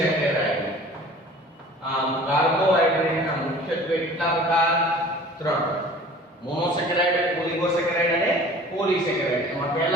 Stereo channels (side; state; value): both; normal; correlation 0.45